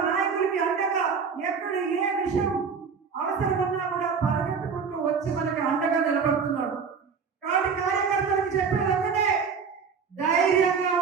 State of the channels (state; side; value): quieter; left; 5.9 dB